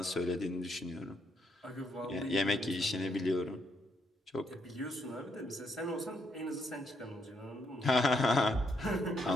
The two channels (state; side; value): normal; both; correlation 0.75